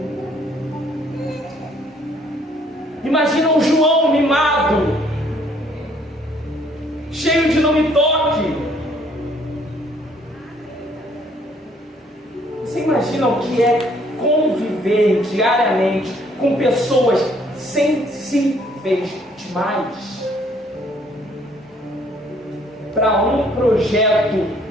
Imagina o João mimado, cheio de não me toque. Você imagina o que é conviver diariamente com pessoas sensíveis demais para um projeto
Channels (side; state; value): both; normal; correlation 0.63